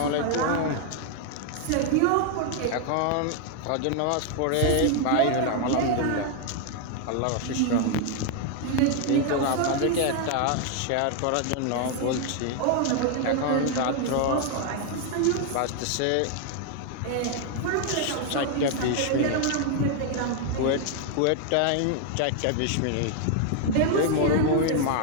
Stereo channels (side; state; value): both; different; correlation 0.00